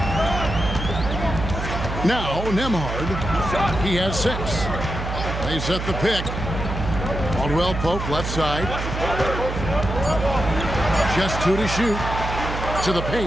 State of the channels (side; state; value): right; noise; hum, 5 dB below the sound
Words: Now, Nembhard. He has 6. They set the pick. Caldwell Pope, left side. Just 2 to shoot. To the